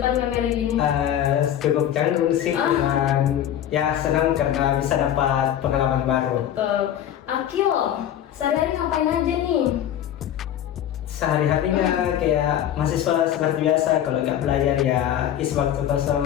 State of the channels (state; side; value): quieter; right; 10.8 dB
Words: kamera gini? Cukup canggung sih, dan ya senang karena bisa dapat pengalaman baru. Betul. Akil, sehari-hari ngapain aja nih? Sehari-harinya kayak mahasiswa seperti biasa, kalau nggak belajar ya isi waktu